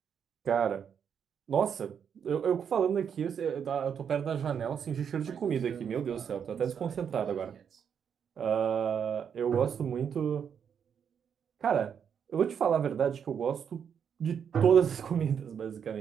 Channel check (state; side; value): quieter; left; 7.7 dB